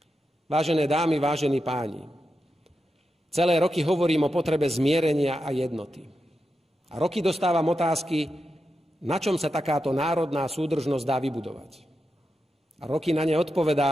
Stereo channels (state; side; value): normal; both; correlation 0.88